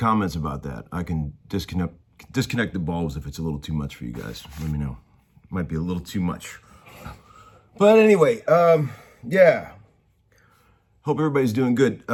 about that. I can disconnect the bulbs if it's a little too much for you guys. Let me know. Might be a little too much. But anyway, yeah. Hope everybody's doing good.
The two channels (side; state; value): both; identical; correlation 1.00